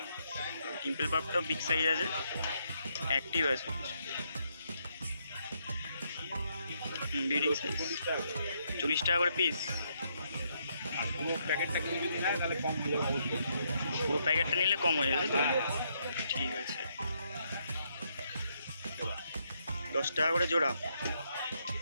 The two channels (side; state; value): both; inverted; correlation -0.76